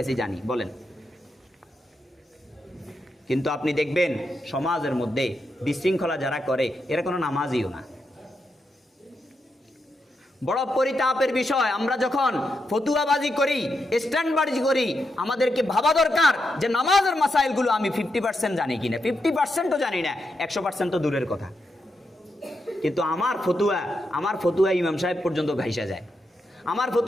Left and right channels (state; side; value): normal; both; correlation 0.84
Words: আছি জানি বলেন? কিন্তু আপনি দেখবেন সমাজের মধ্যে বিশৃঙ্খলা যারা করে এরা কোনো নামাজিও না। বড় পরিতাপের বিষয়, আমরা যখন ফতুয়াবাজি করি, স্ট্যান্ডবাজি করি, আমাদেরকে ভাবা দরকার যে নামাজের মাসাইলগুলো আমি 50% জানি কিনা। 50%ও জানি না, 100% তো দূরের কথা। কিন্তু আমার ফতুয়া ইমাম সাহেব পর্যন্ত ভাইসা যায়, আমার